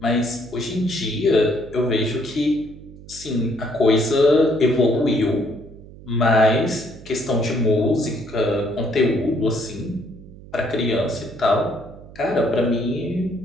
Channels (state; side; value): noise; right; hum, 18 dB below the sound